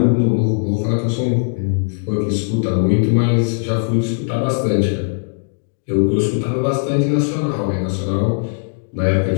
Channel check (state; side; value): silent; right; digital silence